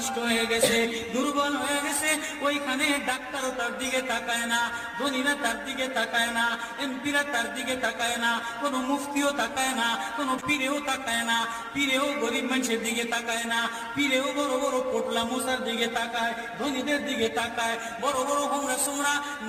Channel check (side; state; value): both; identical; correlation 1.00